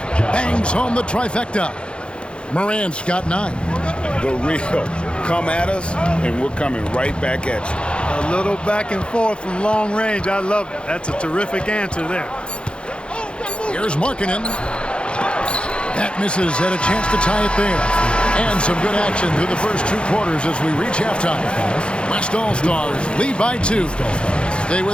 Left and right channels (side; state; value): right; late; 0.056 ms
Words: Bangs home the trifecta. Morant's got 9. The real come at us, and we're coming right back at you. A little back and forth from long range. I love it. That's a terrific answer there. Here's Markkanen. That misses, had a chance to tie it there. And some good action through the first 2 quarters as we reach halftime. West All-Stars lead by 2. Stay